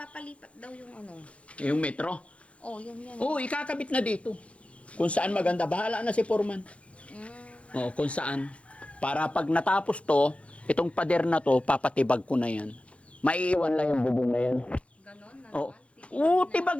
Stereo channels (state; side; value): late; right; 0.062 ms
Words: daw yung ano. yung metro. Oh, yun yan. Oo, ikakabit na dito. Kung saan maganda, bahala na si Foreman. Oo, kung saan. Para pag natapos to, itong pader na to, papatibag ko na yan. Maiiwan lang yung bubong na yan. Ganon na Oo. naman. Oo,